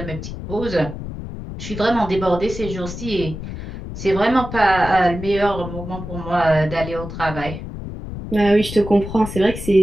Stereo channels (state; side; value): noise; left; rumble, 9 dB below the sound